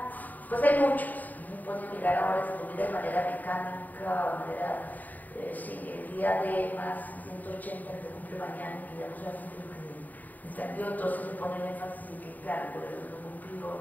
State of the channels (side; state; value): right; late; 0.082 ms